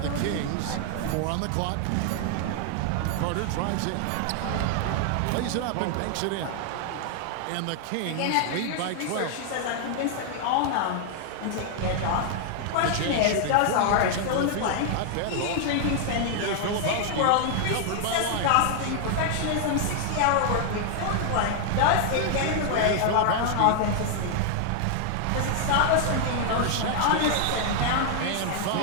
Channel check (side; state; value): both; different; correlation 0.00